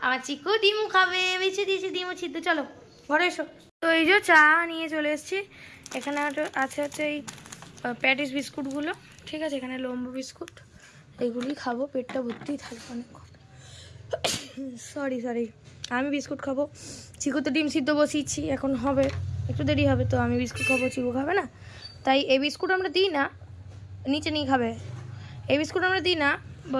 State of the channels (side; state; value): both; identical; correlation 1.00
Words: আমার চিকু ডিম খাবে, বেছে দিয়েছি ডিম সিদ্ধ। চলো ঘরে এসো। তো এই যে চা নিয়ে চলে এসেছি। এখানে আছে এই প্যাটিস বিস্কুটগুলো, ঠিক আছে, এখানে লম্বু বিস্কুট, এইগুলি খাবো, পেটটা ভর্তি থাকবে অনেকক্ষণ। সরি আমি বিস্কুট খাবো, চিকু তো ডিম সিদ্ধ বসিয়েছি, এখন হবে একটু দেরি হবে, তো আমি বিস্কুট খাবো, চিকু খাবে না। তাই এই বিস্কুট আমরা দিই না, নিচে নিয়ে খাবে। এই বিস্কুট আমরা দিই না